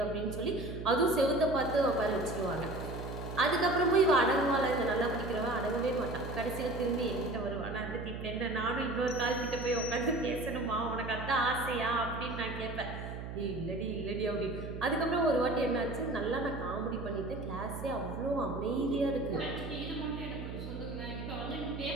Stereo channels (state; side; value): noise; right; hum, 8 dB below the sound